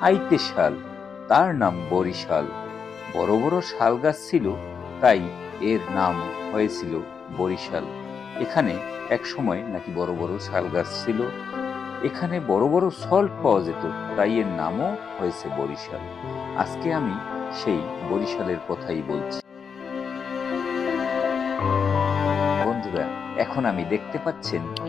আইতে শাল, তার নাম বরিশাল। বড় বড় শাল গাছ ছিল, তাই এর নাম হয়েছিল বরিশাল। এখানে এক সময় নাকি বড় বড় শাল গাছ ছিল। এখানে বড় বড় সল্ট পাওয়া যেত, তাই এর নামও হয়েছে বরিশাল। আজকে আমি সেই বরিশালের কথাই বলছি। বন্ধুরা, এখন আমি দেখতে পাচ্ছেন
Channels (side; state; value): right; quieter; 6.3 dB